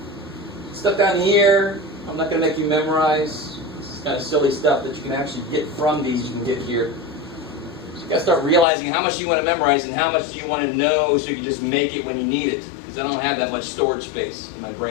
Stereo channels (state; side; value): drops out; right; at 8.7 s